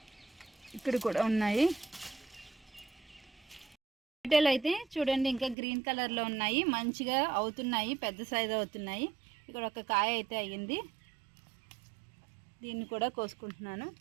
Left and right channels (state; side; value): drops out; left; at 5.6 s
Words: ఇక్కడ కూడా ఉన్నాయి టొమాటోలు అయితే చూడండి ఇంకా గ్రీన్ కలర్లో ఉన్నాయి, మంచిగా అవుతున్నాయి, పెద్ద సైజు అవుతున్నాయి. ఇక్కడ ఒక కాయ అయితే అయ్యింది, దీన్ని కూడా కోసుకుంటున్నాను.